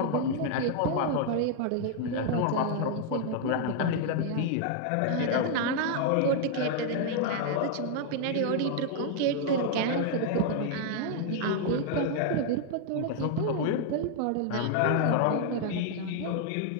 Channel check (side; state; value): both; different; correlation 0.00